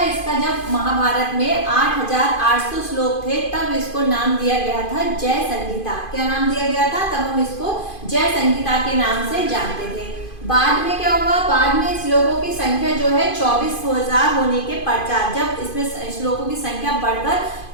इसका जब महाभारत में 8,800 श्लोक थे तब इसको नाम दिया गया था जय संहिता। क्या नाम दिया गया था? तब हम इसको जय संहिता के नाम से जानते थे। बाद में क्या हुआ? बाद में श्लोकों की संख्या जो है 24,000 होने के पश्चात, जब इसमें श्लोकों की संख्या बढ़कर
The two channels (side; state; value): right; late; 2.5 ms